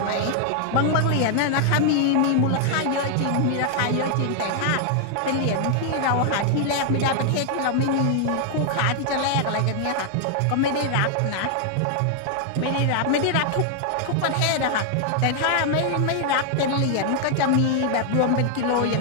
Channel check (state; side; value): different; both; correlation 0.00